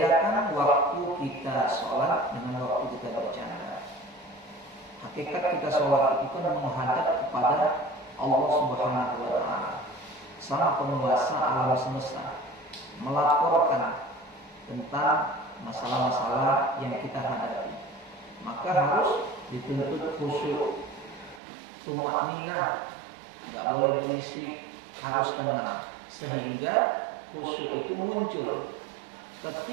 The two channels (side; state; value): left; drops out; at 21.4 s